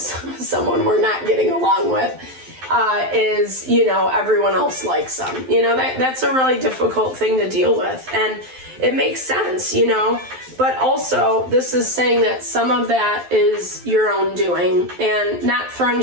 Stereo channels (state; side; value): late; left; 12 ms